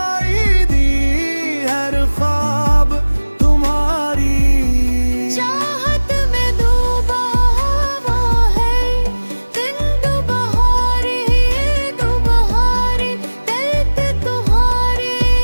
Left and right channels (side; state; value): both; inverted; correlation -1.00